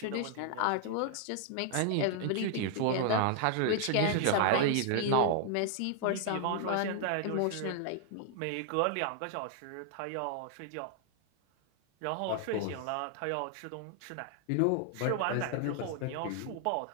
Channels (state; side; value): different; both; correlation 0.00